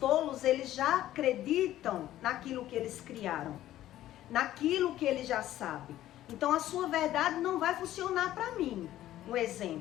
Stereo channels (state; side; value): quieter; right; 13.6 dB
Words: eles já acreditam naquilo que eles criaram, naquilo que eles já sabem. Então, a sua verdade não vai funcionar para mim. Um